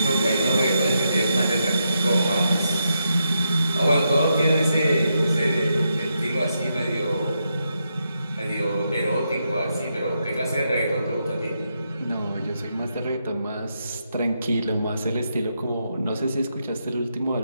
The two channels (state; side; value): inverted; both; correlation -0.82